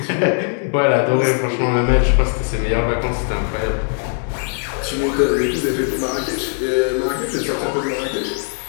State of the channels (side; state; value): right; silent; 57 dB below the other